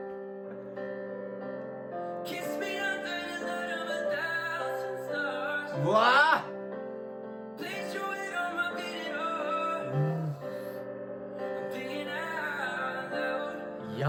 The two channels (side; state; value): both; identical; correlation 1.00